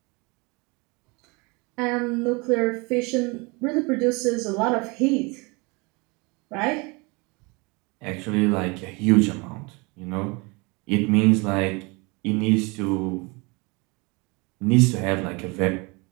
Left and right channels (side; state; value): left; quieter; 28.0 dB